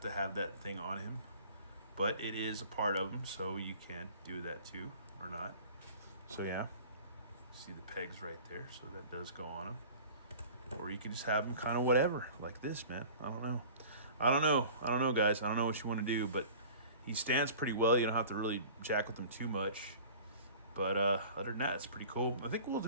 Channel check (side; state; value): both; inverted; correlation -0.43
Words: to have that thing on him. But it is a part of him, so you can do that, too. Or not. So, yeah. See the pegs right there, so that does go on them. Or you can just have them kind of whatever, like this, man. I don't know, guys. I don't know what you want to do, but he stands pretty well. You don't have to really jack with him too much. But other than that, it's pretty cool. I think we'll